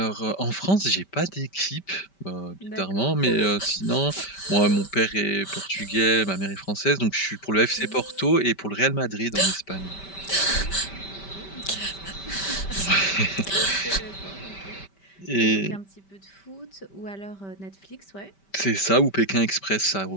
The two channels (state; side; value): late; right; 5.1 ms